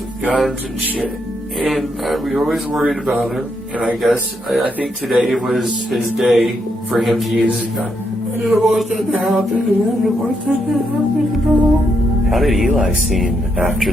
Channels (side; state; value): both; normal; correlation 0.79